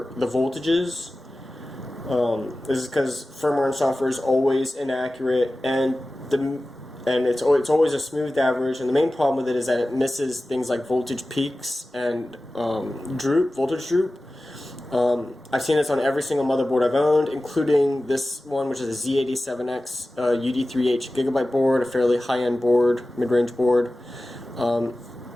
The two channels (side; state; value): both; normal; correlation 0.96